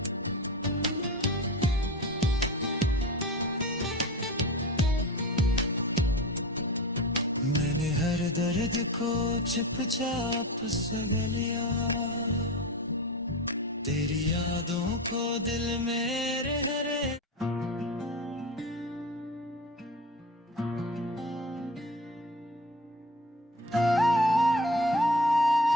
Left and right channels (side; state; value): both; normal; correlation 0.30